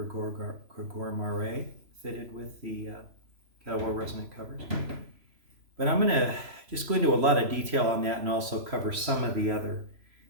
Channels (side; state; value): left; late; 3.0 ms